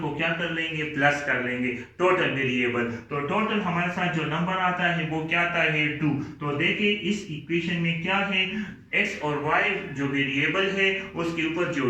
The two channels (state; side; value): identical; both; correlation 1.00